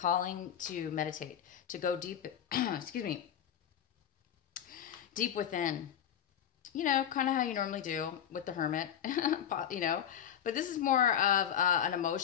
to meditate, to go deep. Deep within, kind of how you normally do with the hermit, but this is more of an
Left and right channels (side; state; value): right; quieter; 9.4 dB